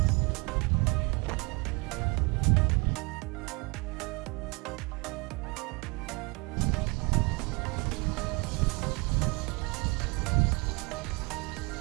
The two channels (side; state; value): left; quieter; 28.5 dB